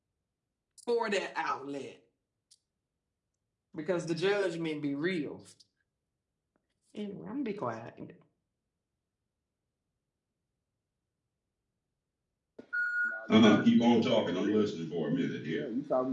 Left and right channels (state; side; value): identical; both; correlation 1.00